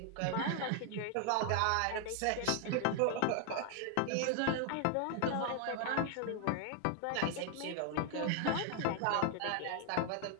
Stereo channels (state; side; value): different; both; correlation 0.00